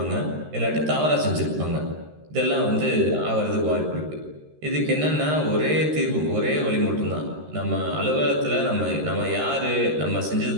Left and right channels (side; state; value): left; late; 13 ms